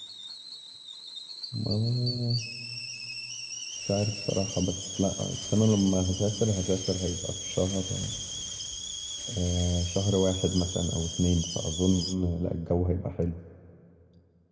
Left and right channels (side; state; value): both; identical; correlation 1.00